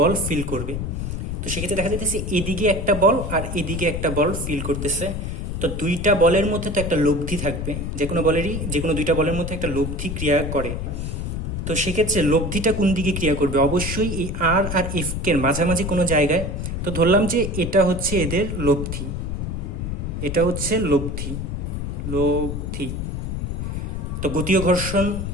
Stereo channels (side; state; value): left; noise; rumble, 4 dB below the sound